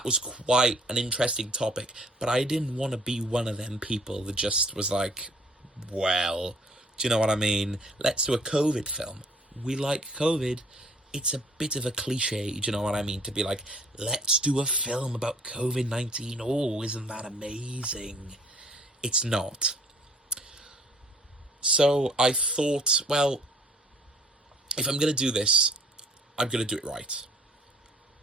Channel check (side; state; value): both; normal; correlation 0.57